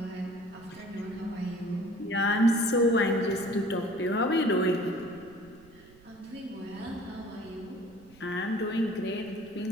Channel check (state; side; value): noise; right; rumble, 25 dB below the sound